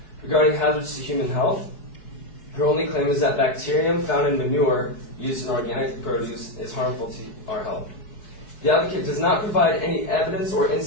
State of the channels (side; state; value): right; late; 4.6 ms